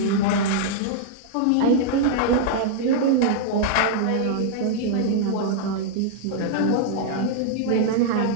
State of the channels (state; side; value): different; both; correlation -0.01